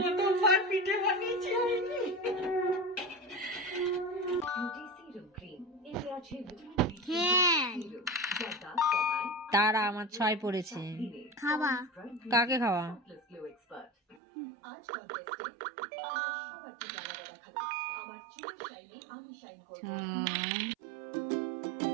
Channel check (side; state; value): left; drops out; at 14.2 s